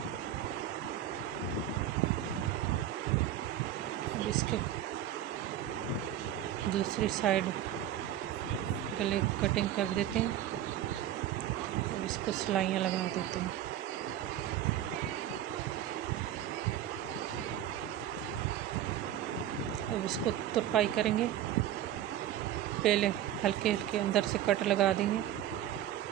अब इसके दूसरी साइड गले कटिंग कर देते हैं। अब इसको सिलाइयाँ लगा देते हैं। अब इसको तुरपाई करेंगे। पहले हल्के हल्के अंदर से कट लगा देंगे,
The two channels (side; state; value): left; quieter; 11.5 dB